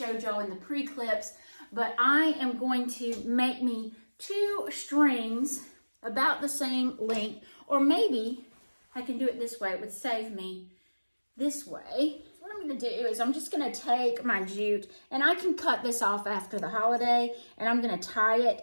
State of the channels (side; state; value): both; inverted; correlation -1.00